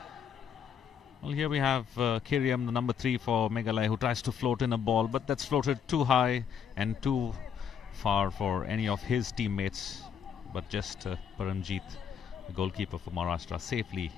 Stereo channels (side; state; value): right; quieter; 7.7 dB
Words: Well, here we have Kiriam, the number 3 for Meghalaya, who tries to float in a ball, but that's floated too high and too far for any of his teammates. But just Paramjit, the goalkeeper for Maharashtra, safely